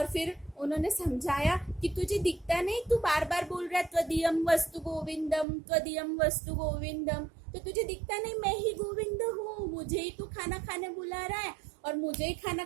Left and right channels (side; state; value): left; drops out; at 5.5 s